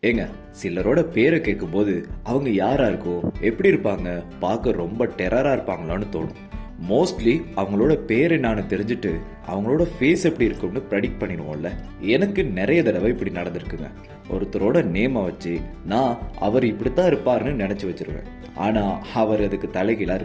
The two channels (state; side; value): identical; both; correlation 1.00